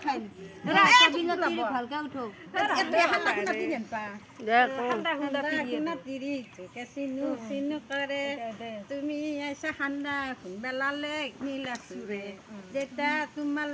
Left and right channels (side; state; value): both; identical; correlation 1.00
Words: খাই এৰা, এটা এইটো দিনত ল'ব। তিৰি ভালকে উঠক এইটো হাল্লা খুন্দা তিৰি আনপা দে কওঁ হাল্লা খুন্দা তিৰি তোকে চিনু চিনু কৰে তুমি আইছা খান্দা খুন্দা লালেক নীলা চুৰে দেতা তোমাৰ